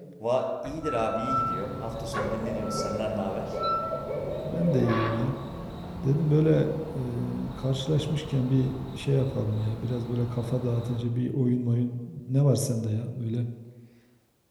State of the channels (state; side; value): identical; both; correlation 1.00